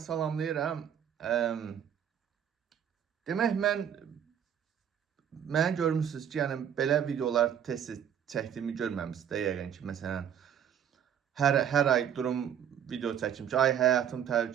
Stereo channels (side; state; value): left; quieter; 9.0 dB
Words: salamlayıram. Demək, mənə görmüsünüz ki, yəni belə videolar tez-tez çəkdiyimi görməmisiniz də yəqin ki, məsələn, hər ay durum video çəkim ki, ay həyatım